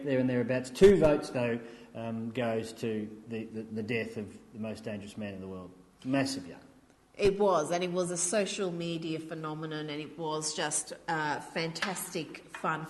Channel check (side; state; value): both; identical; correlation 1.00